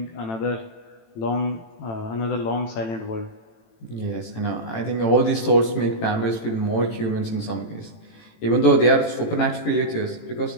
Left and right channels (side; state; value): right; late; 18 ms